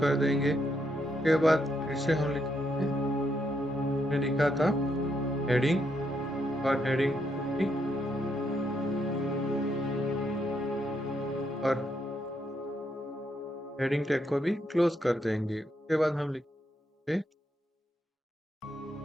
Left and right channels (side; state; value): both; normal; correlation 0.78